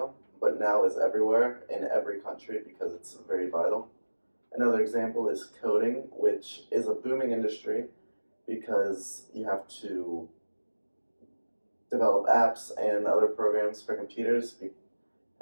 but now is everywhere in every country because it's very vital. Another example is coding, which is a booming industry because you have to develop apps and other programs for computers,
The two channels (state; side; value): inverted; both; correlation -1.00